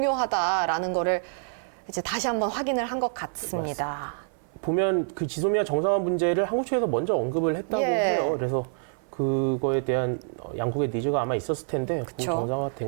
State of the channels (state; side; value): silent; left; 57 dB below the other